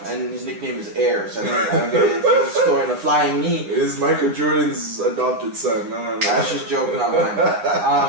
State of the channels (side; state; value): left; late; 9.9 ms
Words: And his nickname is Air, so I don't get it. If he's scoring a flying knee. It is Michael Jordan's adopted son. No. That's just joke, not mine.